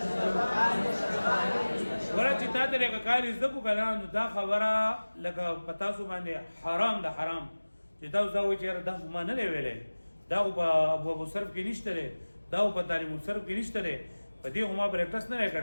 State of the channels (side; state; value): both; inverted; correlation -1.00